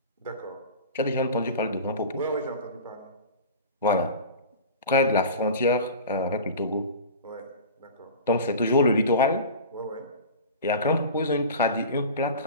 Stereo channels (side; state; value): both; inverted; correlation -0.34